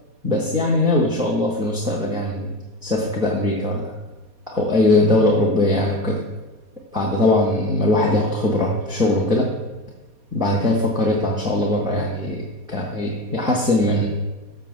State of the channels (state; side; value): late; left; 4.2 ms